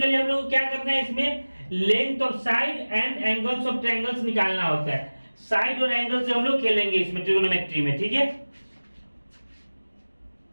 हम लोग क्या करना है? इसमें length of side and angles of triangles निकालना होता है। साइड और एंगल से हम लोग खेलेंगे इसमें ट्रिगोनोमेट्री में। ठीक है।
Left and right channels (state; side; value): inverted; both; correlation -1.00